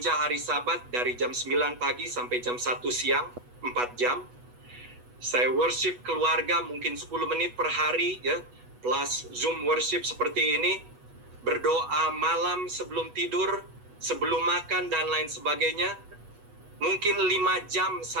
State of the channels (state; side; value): late; left; 8.2 ms